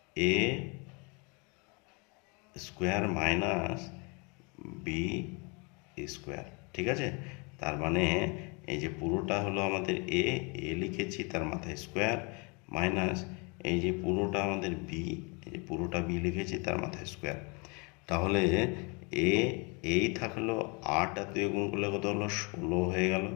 এ স্কোয়ার মাইনাস বি স্কোয়ার। ঠিক আছে, তার মানে এই যে পুরোটা হলো আমাদের এ লিখেছি, তার মাথায় স্কোয়ার, মাইনাস এই যে পুরোটা আমাদের বি, এই যে পুরোটা বি লিখেছি, তার মাথায় স্কোয়ার। তাহলে এই থাকলো 8 আর 2 গুণ করলে কত হলো, 16 হয়ে গেল,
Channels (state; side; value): quieter; right; 31.1 dB